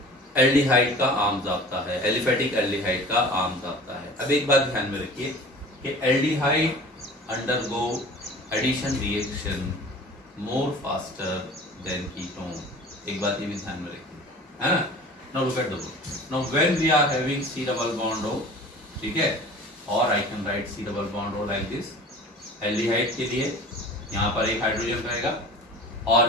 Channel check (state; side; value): normal; both; correlation 0.42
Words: एल्डिहाइड का आम जाब्ता है, एलिफेटिक एल्डिहाइड का आम जाब्ता है। अब एक बात ध्यान में रखिए कि aldehyde undergo addition reaction more faster than ketone. एक बात ये भी ध्यान में रखिए, है ना। Now look at the board. Now when we are having C double bond O, ठीक है, और I can write C double bond O like this. Aldehyde के लिए यहाँ पर एक हाइड्रोजन रहेगा, और